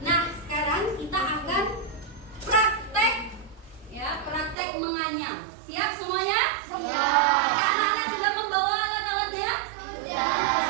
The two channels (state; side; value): drops out; left; at 4.5 s